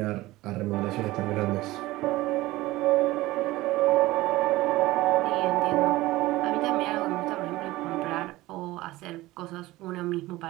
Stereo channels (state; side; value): quieter; left; 18.4 dB